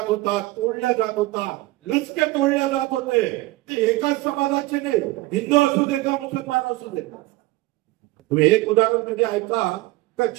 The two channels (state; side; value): quieter; left; 19.8 dB